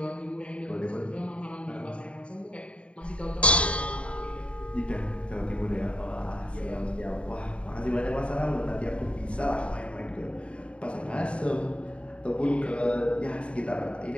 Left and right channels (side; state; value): right; late; 0.060 ms